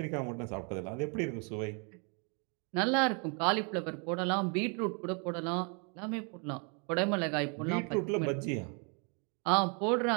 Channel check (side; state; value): left; quieter; 36.2 dB